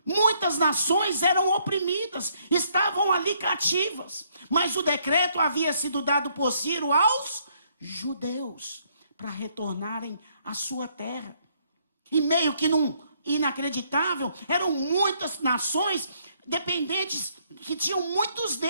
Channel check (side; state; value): both; inverted; correlation -0.69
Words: Muitas nações eram oprimidas, estavam ali cativas. Mas o decreto havia sido dado por Ciro aos judeus, para retornarem à sua terra. E meio que num inacreditável, eram muitas nações dependentes, que tinham muitos